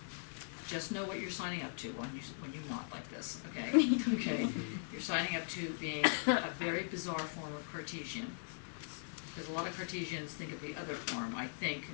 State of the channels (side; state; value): right; silent; digital silence